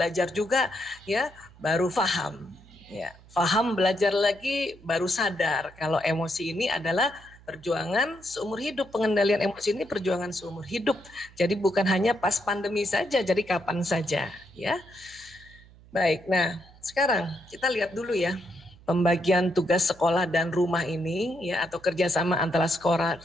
juga ya, baru paham. Ya, paham, belajar lagi, baru sadar kalau emosi ini adalah perjuangan seumur hidup. Pengendalian emosi ini perjuangan seumur hidup. Jadi bukan hanya pas pandemi saja, jadi kapan saja ya. Baik, nah sekarang kita lihat dulu ya pembagian tugas sekolah dan rumah ini ya, atau kerjasama antara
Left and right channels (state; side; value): noise; right; hum, 24 dB below the sound